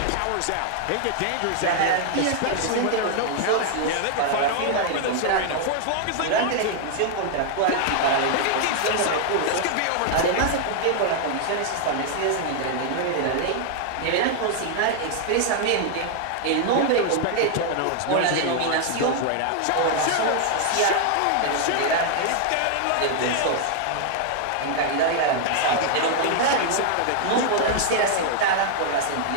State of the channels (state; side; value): different; both; correlation 0.00